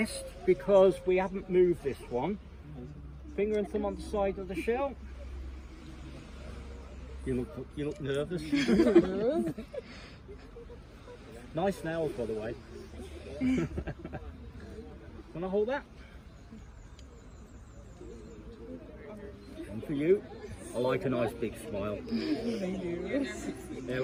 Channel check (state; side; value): identical; both; correlation 1.00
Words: because we haven't moved this one. Finger and thumb on the side of the shell. You look nervous. Nice nails, by the way. Can I hold that? And for you, I like a nice big smile. There